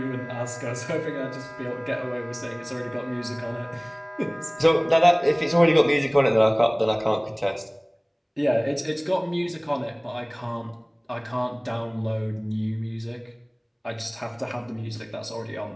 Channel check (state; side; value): identical; both; correlation 1.00